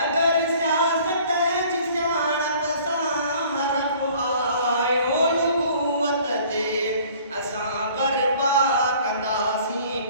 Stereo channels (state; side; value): inverted; both; correlation -0.53